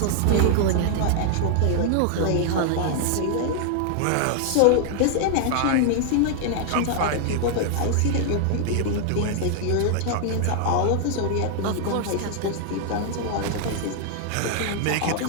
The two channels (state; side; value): different; both; correlation 0.00